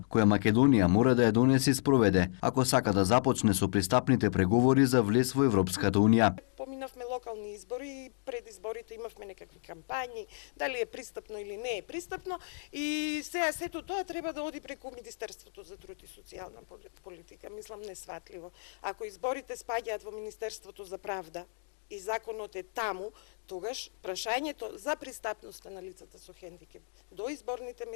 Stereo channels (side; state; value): right; silent; digital silence